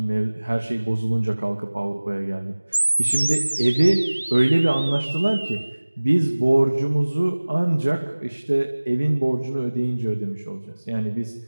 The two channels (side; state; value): both; inverted; correlation -1.00